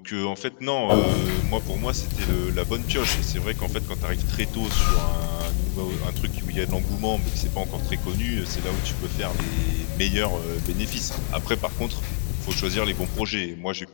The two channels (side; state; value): right; silent; digital silence